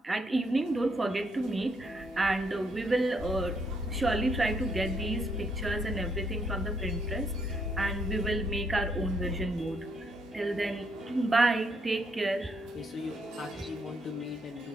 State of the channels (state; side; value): normal; both; correlation 0.74